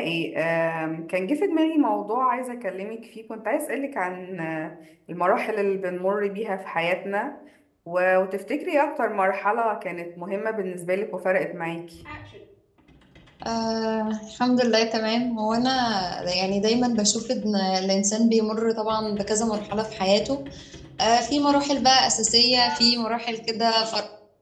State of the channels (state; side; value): identical; both; correlation 1.00